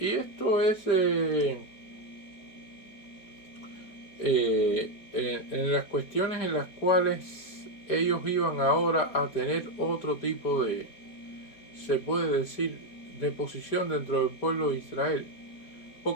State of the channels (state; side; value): late; right; 4.2 ms